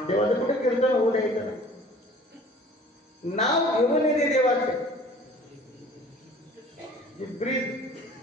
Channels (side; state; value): both; normal; correlation 0.48